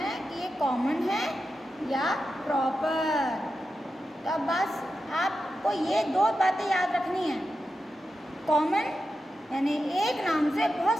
कि ये कॉमन है या प्रॉपर। तो अब बस आपको ये दो बातें याद रखनी है। कॉमन यानी एक नाम से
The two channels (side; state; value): both; normal; correlation 0.90